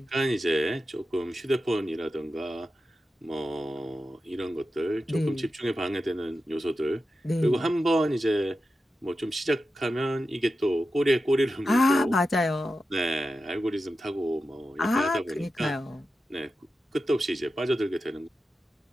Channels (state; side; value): normal; both; correlation 0.91